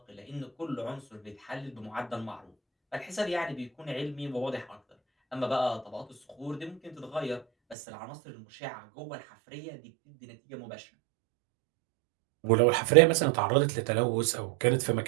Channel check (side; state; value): left; drops out; at 7.8 s